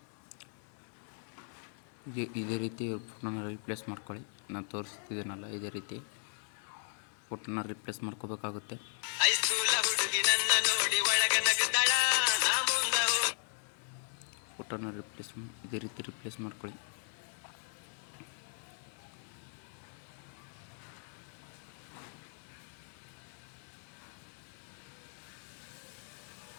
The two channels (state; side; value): silent; right; 53 dB below the other